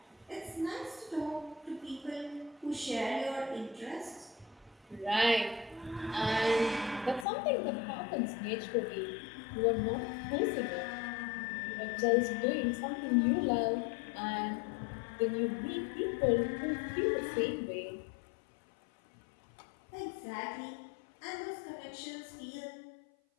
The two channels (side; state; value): right; drops out; at 7.2 s